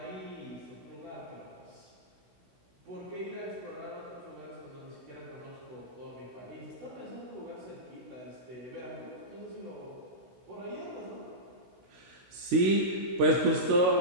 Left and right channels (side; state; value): left; late; 16 ms